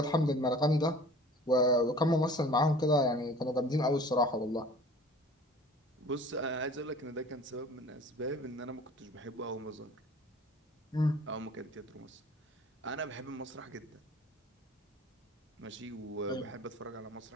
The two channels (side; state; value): both; normal; correlation 0.46